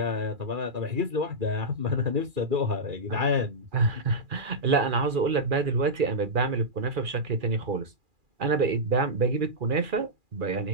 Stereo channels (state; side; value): late; left; 2.4 ms